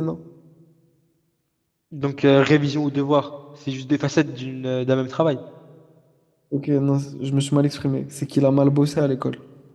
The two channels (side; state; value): both; identical; correlation 1.00